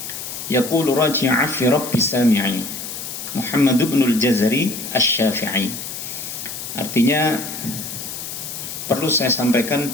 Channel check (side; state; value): left; noise; hiss, 8 dB below the sound